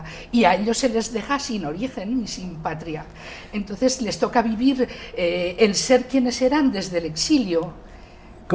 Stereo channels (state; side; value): identical; both; correlation 1.00